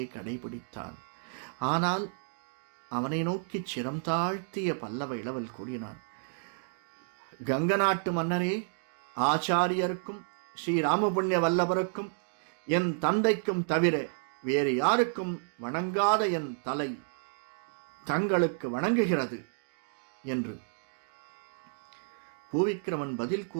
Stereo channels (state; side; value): silent; left; digital silence